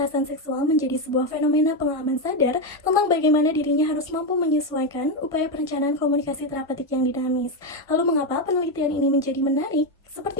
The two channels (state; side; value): normal; both; correlation 0.08